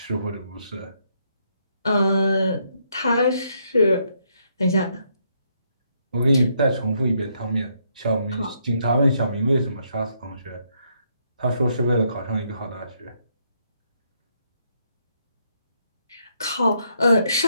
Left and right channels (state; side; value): inverted; both; correlation -0.74